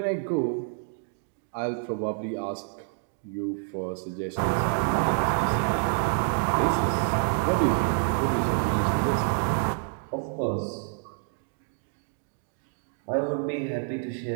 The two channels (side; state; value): left; silent; 59 dB below the other